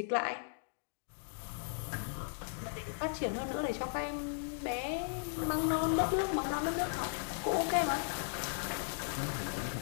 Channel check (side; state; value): right; silent; digital silence